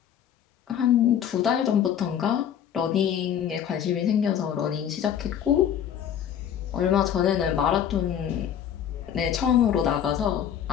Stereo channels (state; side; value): quieter; right; 9.3 dB